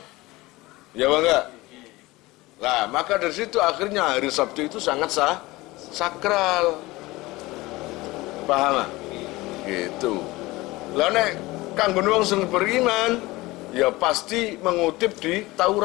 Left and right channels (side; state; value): right; quieter; 20.4 dB